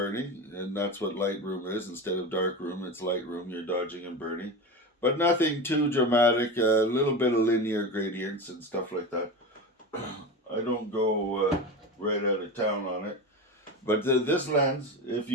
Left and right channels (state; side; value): normal; both; correlation 0.24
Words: and that's what Lightroom is. Instead of darkroom, it's Lightroom. You're dodging and burning, but nothing too dramatic. A little bit of linear gradients and stuff like that. I don't go right out of town on it. But this lens, if